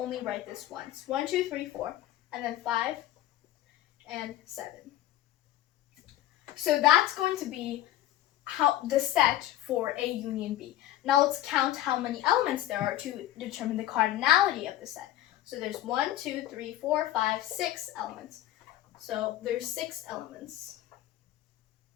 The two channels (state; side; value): quieter; right; 13.7 dB